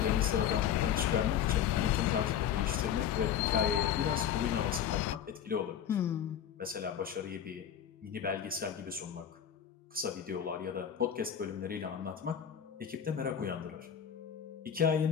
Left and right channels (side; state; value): right; quieter; 9.1 dB